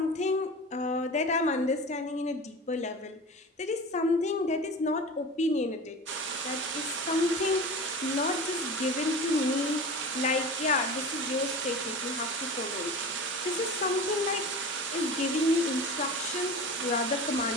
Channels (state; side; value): normal; both; correlation 0.32